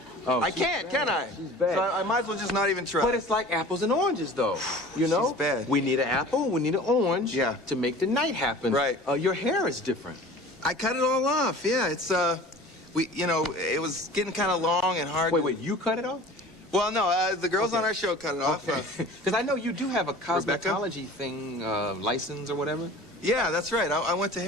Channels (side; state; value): both; normal; correlation 0.42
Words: Oh, I can't, can I? She's bad. So I might as well just not even try. But it's like apples and oranges, though. You know? She's bad. We need an apple, we need an orange to make the night happen. Right. Your hair is different. I cut it all off. Yeah, it's, it was getting kind of long and hard. Wait, you cut it off? Well, no, the girls on our show cut it off. Because I know you do have a cosmetology thing, license or whatever. Yeah, that's right. I went to